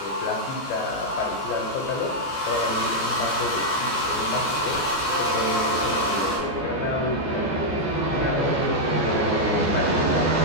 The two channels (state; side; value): late; right; 14 ms